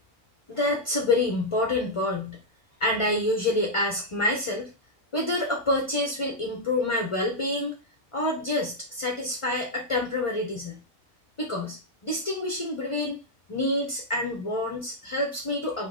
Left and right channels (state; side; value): normal; both; correlation -0.04